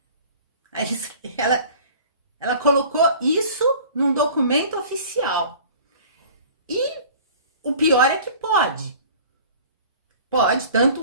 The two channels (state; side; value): inverted; both; correlation -0.45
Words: Aí ela colocou isso num documento oficial. E o pior é que pode. Pode,